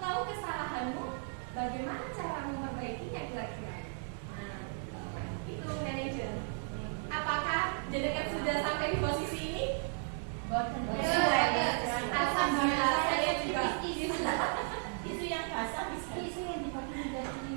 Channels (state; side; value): silent; left; 54 dB below the other